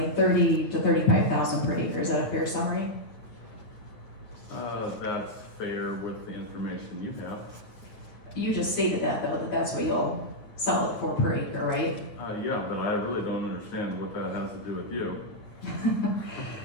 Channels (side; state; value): right; late; 9.3 ms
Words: $30,000 to $35,000 per acre. Is that a fair summary? That's fair with the information you have. You just stated that though, that that's what you'll sell it for per acre, right? Yeah, but I really don't understand what that has to do with you.